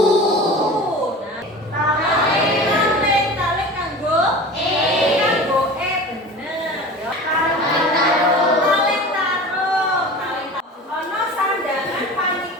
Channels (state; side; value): normal; both; correlation 0.36